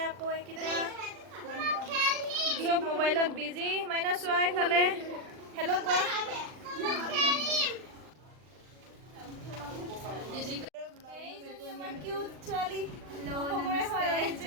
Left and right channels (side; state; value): left; late; 39 ms